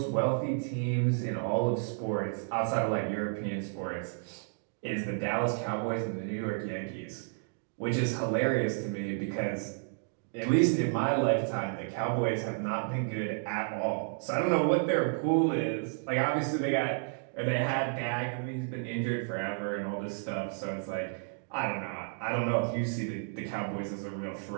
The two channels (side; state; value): left; silent; digital silence